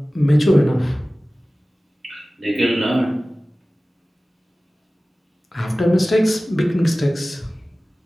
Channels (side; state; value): both; normal; correlation 0.97